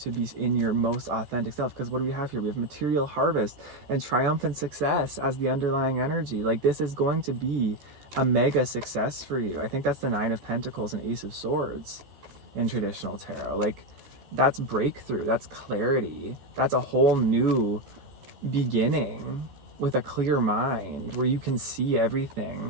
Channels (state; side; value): late; left; 15 ms